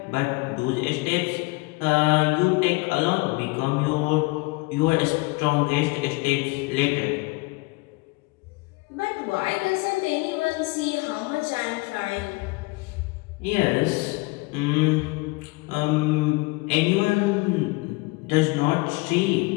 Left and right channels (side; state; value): right; quieter; 25.4 dB